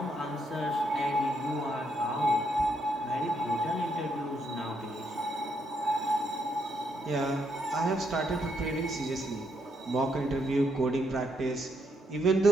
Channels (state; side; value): normal; both; correlation 0.76